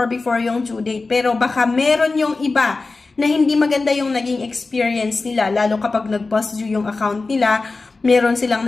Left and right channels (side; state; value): right; quieter; 3.7 dB